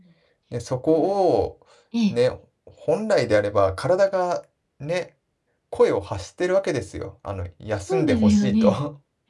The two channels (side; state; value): both; identical; correlation 1.00